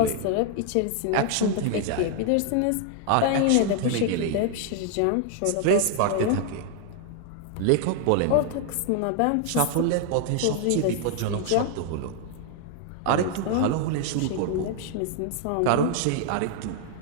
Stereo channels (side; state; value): both; different; correlation 0.00